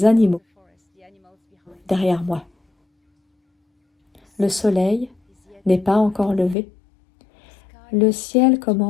animaux, derrière moi. Le soleil n'est pas encore levé. Le ciel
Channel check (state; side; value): drops out; right; at 6.6 s